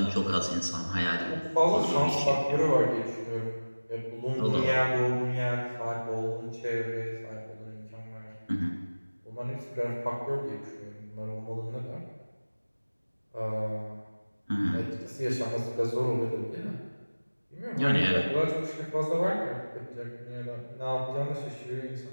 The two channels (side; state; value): both; inverted; correlation -1.00